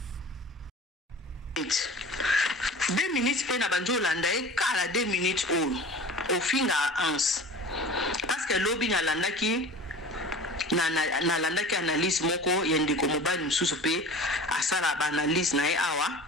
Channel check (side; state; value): both; normal; correlation 0.39